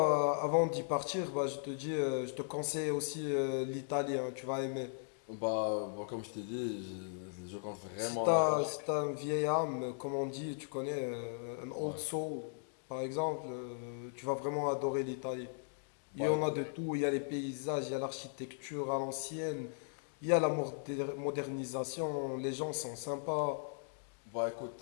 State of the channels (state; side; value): silent; right; digital silence